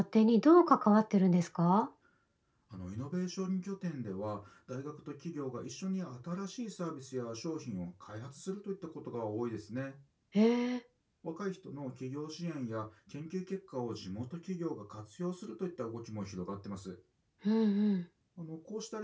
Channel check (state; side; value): identical; both; correlation 1.00